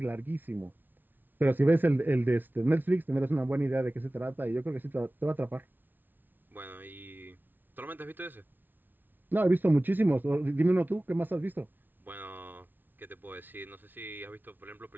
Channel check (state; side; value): late; left; 0.090 ms